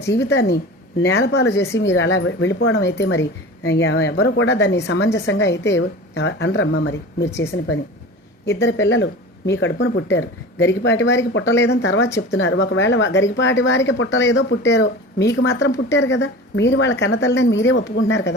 జీవితాన్ని నేలపాలు చేసి మీరు అలా వెళ్ళిపోవడం అయితే మరి ఎవరు కూడా దాన్ని సమంజసంగా అయితే అనరమ్మా. మరి మీరు చేసిన పని. ఇద్దరు పిల్లలు మీ కడుపున పుట్టారు. గరికపాటి వారికి పుట్టలేదని తర్వాత చెప్తున్నారు. ఒకవేళ గరికపాటి వారికి పుట్టలేదో పుట్టారో, మీకు మాత్రం పుట్టారు కదా. మీరు వాళ్ళ కన్నతల్లిని మీరే ఒప్పుకుంటున్నారు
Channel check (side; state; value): both; normal; correlation 0.35